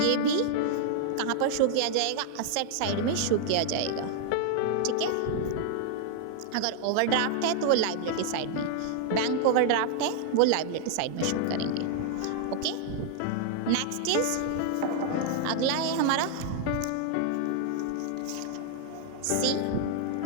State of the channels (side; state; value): both; different; correlation 0.00